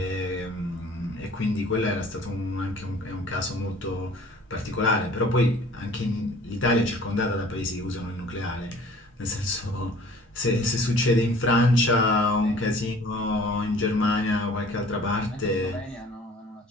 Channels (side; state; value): both; normal; correlation 0.50